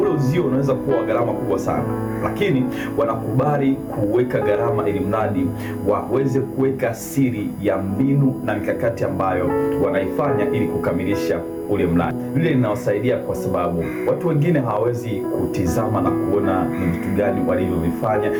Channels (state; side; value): identical; both; correlation 1.00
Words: uzio unaweza kuwa gharama kubwa sana, lakini wanakubali kuweka gharama ili mradi waweze kuweka siri ya mbinu na mikakati ambayo wanaifanya ili kukamilisha ule mradi. Lile linawasaidia kwa sababu watu wengine hawawezi kutizama na kuona ni vitu gani walivyovifanya.